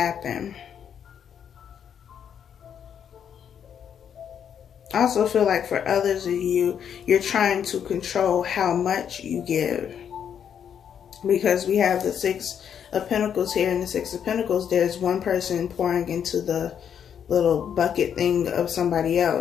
I also feel like for others of you, you're trying to control how much you give. Because we have the 6 of Pentacles here. In the 6 of Pentacles, there's one person pouring into the little bucket thing of somebody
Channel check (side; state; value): right; quieter; 8.4 dB